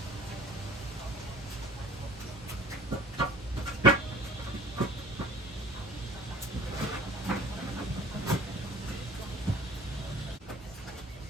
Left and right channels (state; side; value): normal; both; correlation 0.47